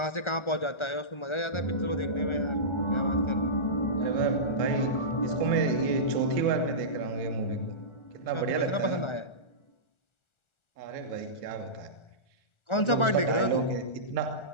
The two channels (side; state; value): right; late; 1.4 ms